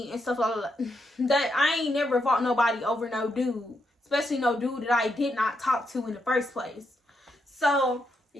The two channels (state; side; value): normal; both; correlation 0.80